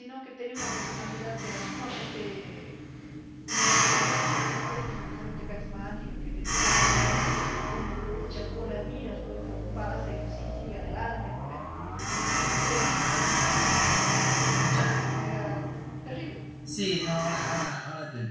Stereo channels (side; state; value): both; identical; correlation 1.00